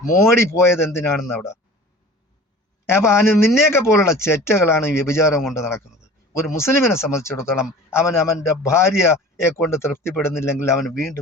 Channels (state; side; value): normal; both; correlation 0.41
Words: മോഡി പോയത് എന്തിനാണെന്ന് അവിടെ. അപ്പം നിന്നെയൊക്കെ പോലുള്ള ചെറ്റകളാണ് ഈ വ്യഭിചാരം കൊണ്ട് നടക്കുന്നത്. ഒരു മുസ്ലിമിനെ സംബന്ധിച്ചിടത്തോളം അവൻ്റെ ഭാര്യയെ കൊണ്ട് തൃപ്തിപ്പെടുന്നില്ലെങ്കിൽ അവൻ